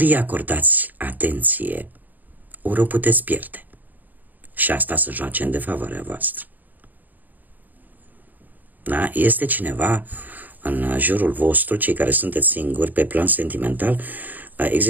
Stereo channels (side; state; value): left; late; 0.084 ms